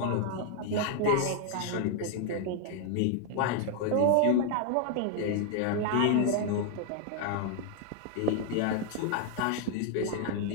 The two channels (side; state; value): both; different; correlation 0.00